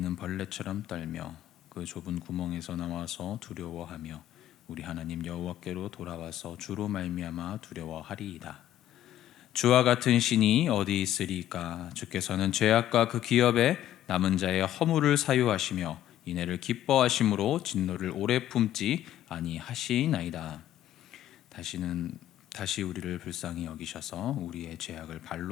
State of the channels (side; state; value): right; quieter; 12.3 dB